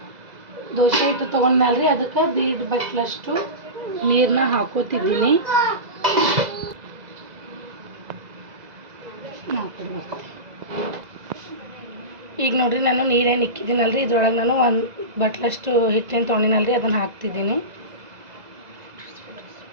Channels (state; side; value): late; left; 2.0 ms